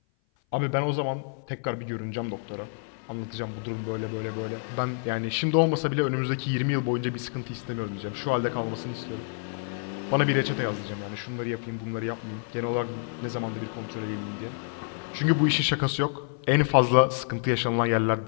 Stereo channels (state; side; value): silent; right; 56 dB below the other